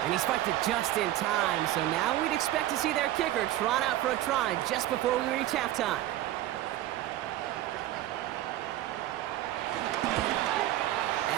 And he spiked it just in time, so now we'd expect to see their kicker trot out for a try just before we reach halftime.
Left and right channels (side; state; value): left; quieter; 14.2 dB